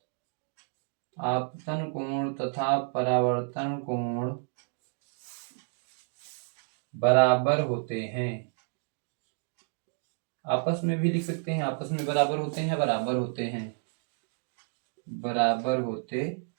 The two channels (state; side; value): silent; left; 57 dB below the other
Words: आपतन कोण तथा परावर्तन कोण बराबर होते हैं। आपस में भी लिख सकते हैं, आपस में बराबर होते हैं, बराबर होते हैं, बराबर होते